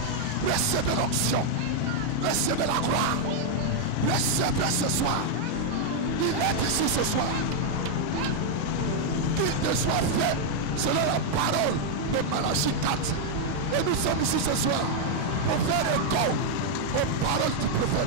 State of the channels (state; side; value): different; both; correlation 0.00